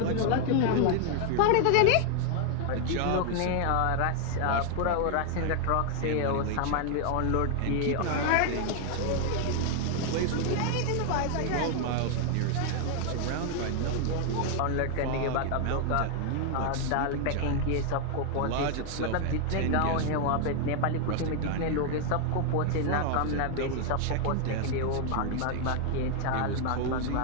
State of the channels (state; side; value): different; both; correlation 0.00